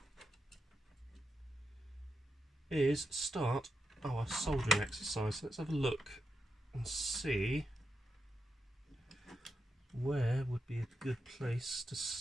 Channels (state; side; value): normal; both; correlation 0.86